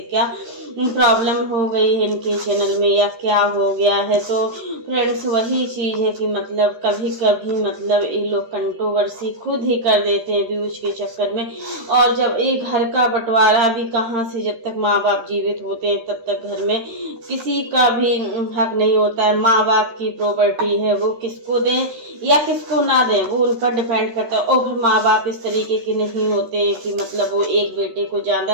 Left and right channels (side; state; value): left; late; 13 ms